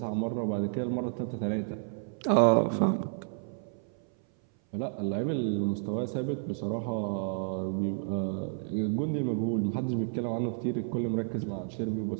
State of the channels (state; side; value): silent; left; 57 dB below the other